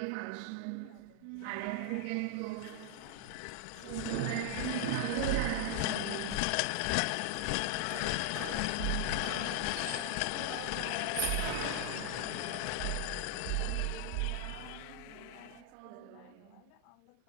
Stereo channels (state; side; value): different; both; correlation 0.00